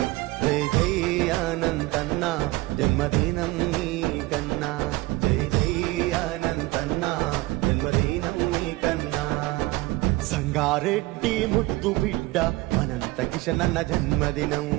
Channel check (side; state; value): left; quieter; 20.1 dB